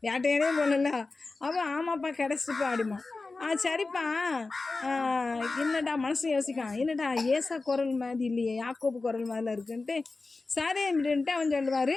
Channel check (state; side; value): quieter; right; 3.6 dB